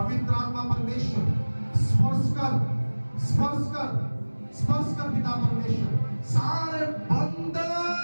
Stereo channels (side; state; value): both; inverted; correlation -1.00